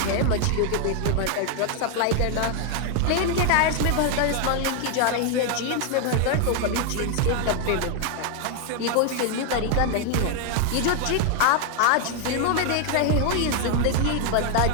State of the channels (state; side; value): different; both; correlation 0.01